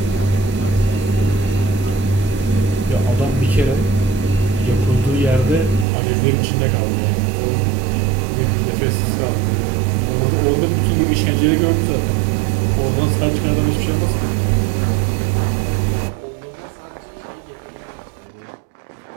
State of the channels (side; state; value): left; drops out; at 5.9 s